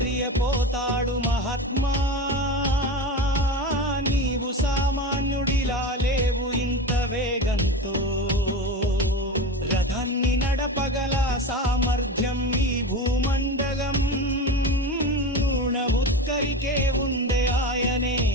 మహాత్మా, నీవు సామాన్యుడిలా లేవు ఇంత వేగంతో. రథాన్ని నడపగల సామర్థ్యం ఈ భూమండలం ఉత్తరికే ఉందే, ఆయనే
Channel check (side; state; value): both; normal; correlation 0.26